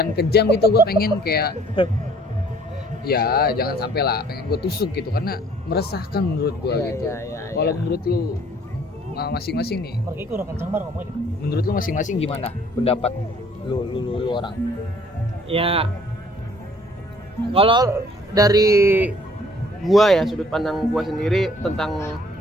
kejam gitu, gue pengen kayak ya jangan sampai lah, pengen gue tusuk gitu karena meresahkan menurut gue gitu. Kalau menurut lu masing-masing nih, menurut lu masing-masing gimana pendapat lu orang? Ya, kalau dari gua ya, sudut pandang gua sendiri tentang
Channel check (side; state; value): both; normal; correlation 0.57